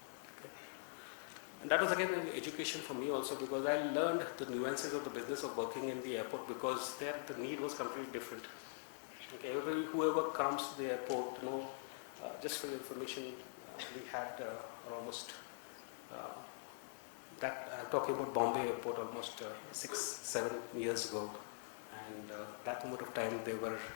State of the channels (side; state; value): right; silent; digital silence